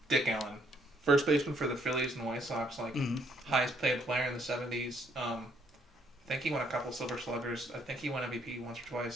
Dick Allen. First baseman for the Phillies and White Sox, like highest paid player in the 70s. I think he won a couple Silver Sluggers. I think he won MVP once or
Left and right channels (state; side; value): normal; both; correlation 0.68